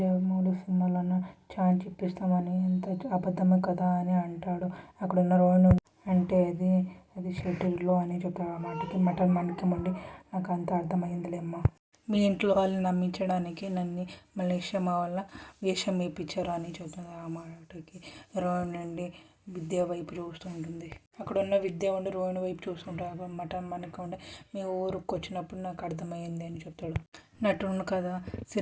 సినిమాలోన ఛాన్స్ ఇప్పిస్తామని ఎంత అబద్ధమే కదా అని అంటాడు. అక్కడున్న రోహిణి అంటే అది షెడ్యూల్లో అని చెప్తాడు. ఆ మాటకి మాణిక్యం ఉండి నాకు అంత అర్థమైందిలేమ్మా, మీ ఇంట్లో వాళ్ళని నమ్మించడానికి నన్ను మలేషియా మా వల్ల వేషం వేయించారు అని చెప్తుంది. ఆ మాటకి రోహిణి నుండి విద్య వైపు చూస్తూ ఉంటుంది. అక్కడ ఉన్న విద్య ఉండి రోహిణి వైపు చూస్తుంటాడు. మాణిక్యం ఉండి మీ ఊరికి వచ్చినప్పుడు నాకు అర్థమైంది అని చెప్తాడు. నటుడు కదా,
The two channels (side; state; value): both; identical; correlation 1.00